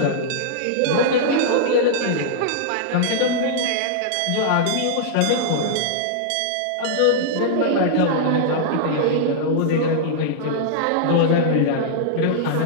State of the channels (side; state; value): both; different; correlation -0.01